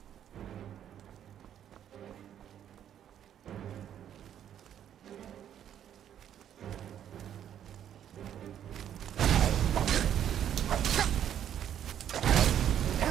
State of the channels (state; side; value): quieter; left; 10.0 dB